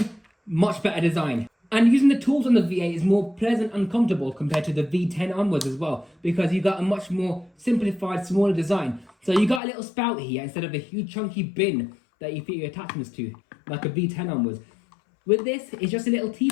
much better design. And using the tools on the V8 is more pleasant and comfortable compared to the V10 onwards as well, because you got a much more simplified, smaller design. So you got a little spout here instead of a huge chunky bin that you fit your attachments to, like a V10 onwards. With this, it's just a little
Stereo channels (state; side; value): drops out; right; at 9.6 s